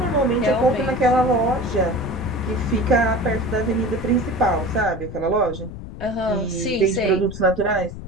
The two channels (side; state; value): left; noise; rumble, 11 dB below the sound